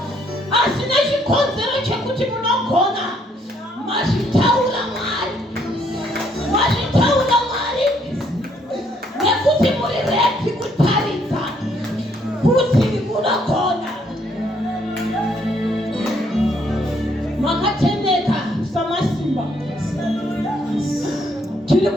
asina chikonzero chekuti munogona. Mazvitaura Mwari, mazvitaura Mwari, nekuti muri ready kutaridza kuti munogona. Makatendeka samasimba, tiri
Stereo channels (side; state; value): both; normal; correlation 0.69